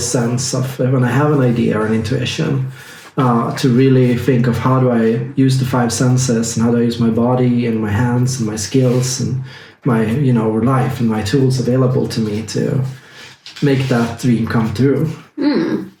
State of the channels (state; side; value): identical; both; correlation 1.00